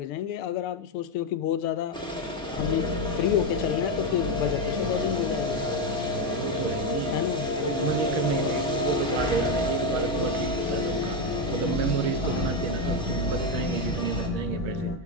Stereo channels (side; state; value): both; normal; correlation 0.08